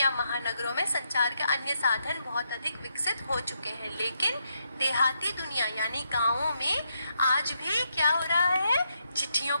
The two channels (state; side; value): inverted; both; correlation -0.80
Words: महानगरों में संचार के अन्य साधन बहुत अधिक विकसित हो चुके हैं। लेकिन देहाती दुनिया यानी गांवों में आज भी क्या हो रहा है? चिट्ठियों